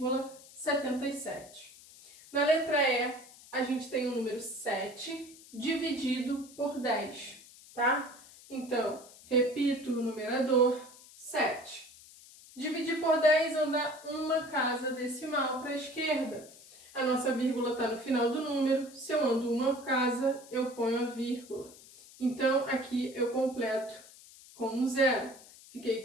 Na letra E, a gente tem o número 7 dividido por 10, tá? Então, repito o numerador, 7. Dividir por 10, andar uma casa decimal para a esquerda. A nossa vírgula está no final do número. Se eu ando uma casa, eu ponho a vírgula. Então, aqui eu completo com um zero. Fiquei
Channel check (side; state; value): left; noise; hiss, 21 dB below the sound